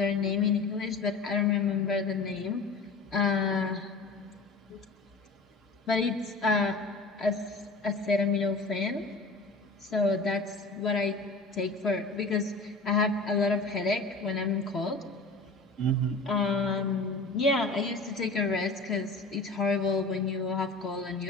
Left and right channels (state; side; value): quieter; right; 3.5 dB